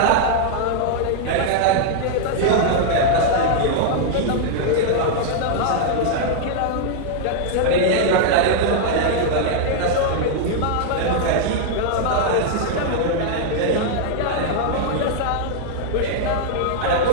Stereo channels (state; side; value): different; both; correlation -0.01